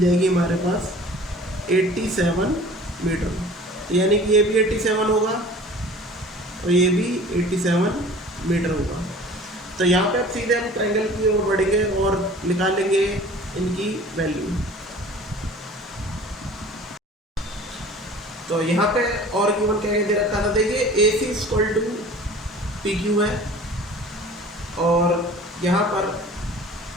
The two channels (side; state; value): both; normal; correlation 0.45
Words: जाएगी हमारे पास 87 मीटर। तो यानी कि ये भी 87 होगा और ये भी 87 मीटर होगा। तो यहाँ पे अब सीधे हम ट्रायंगल की ओर बढ़ेंगे और निकालेंगे इनकी वैल्यू। तो यहाँ पे और गिवन क्या दे रखा था, देखिए ए सी इक्वल टू पी क्यू है, और यहाँ पर